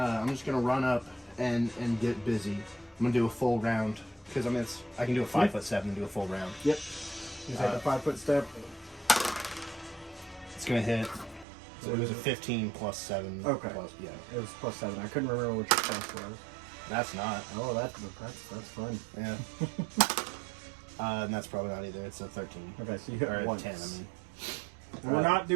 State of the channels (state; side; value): drops out; left; at 11.5 s